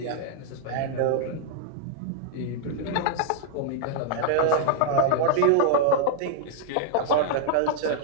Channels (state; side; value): different; both; correlation -0.01